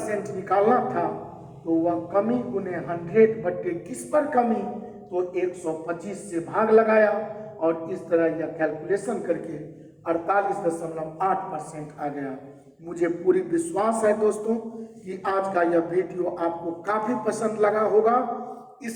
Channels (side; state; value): both; identical; correlation 1.00